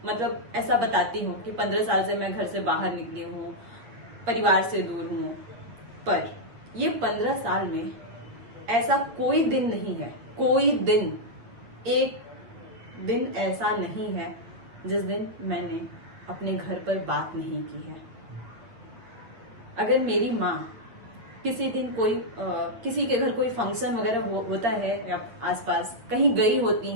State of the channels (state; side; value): late; left; 9.0 ms